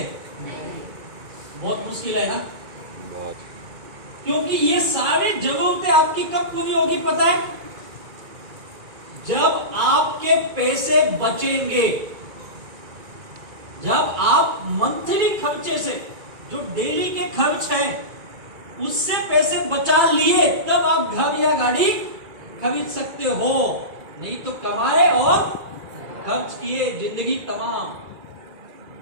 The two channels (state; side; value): late; left; 2.3 ms